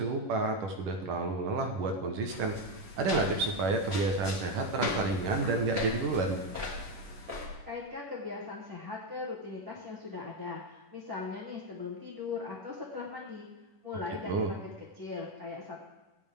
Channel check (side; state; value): left; late; 10 ms